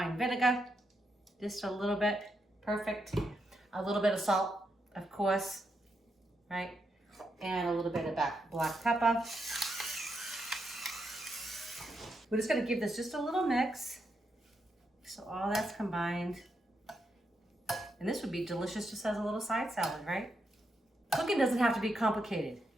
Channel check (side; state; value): both; normal; correlation 0.82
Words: vinegar, just a little bit, perfect. A little bit of salt, of course, right? And a little bit of black pepper. We're just gonna give this just a little mix. So all that's combined. And this would be delicious just as a little side salad, right? Cooking doesn't have to be complicated.